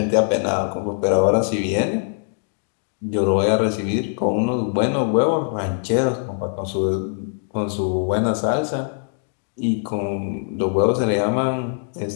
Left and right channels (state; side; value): silent; right; digital silence